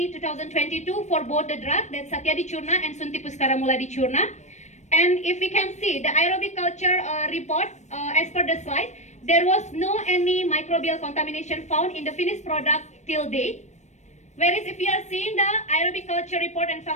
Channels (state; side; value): late; right; 0.34 ms